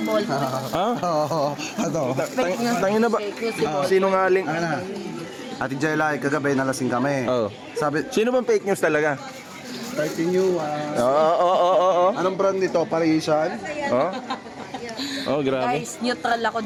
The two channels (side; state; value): both; identical; correlation 1.00